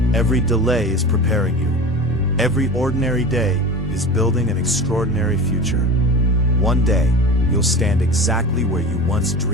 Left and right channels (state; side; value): normal; both; correlation 0.32